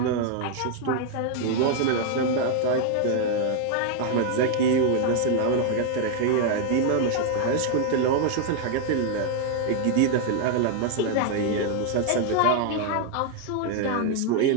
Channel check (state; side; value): different; both; correlation 0.00